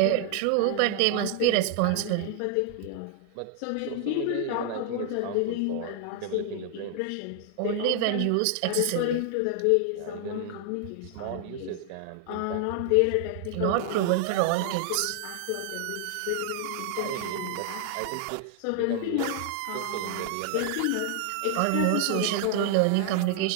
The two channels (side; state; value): both; different; correlation 0.00